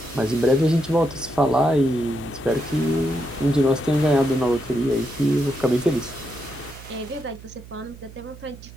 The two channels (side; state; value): right; noise; hum, 17 dB below the sound